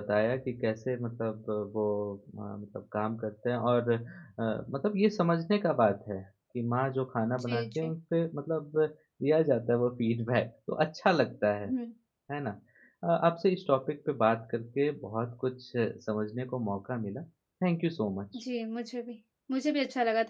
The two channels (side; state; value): both; identical; correlation 1.00